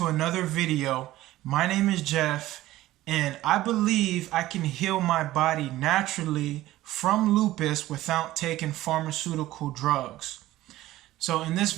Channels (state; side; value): quieter; left; 15.8 dB